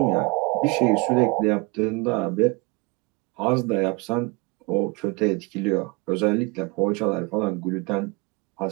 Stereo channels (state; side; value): quieter; left; 27.8 dB